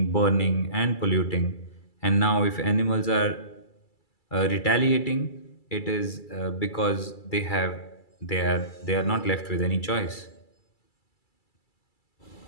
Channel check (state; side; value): late; right; 2.3 ms